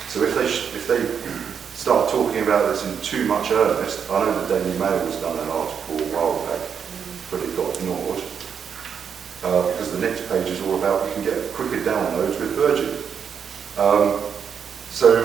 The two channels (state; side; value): quieter; left; 7.2 dB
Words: So if they start talking about this in too much earnest, I know the Daily Mail has done an article a while back, but it got ignored, because the next page is all about you can get quicker downloads with Virgin. So